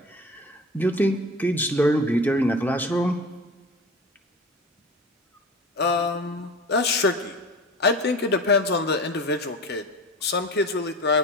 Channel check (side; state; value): both; normal; correlation 0.34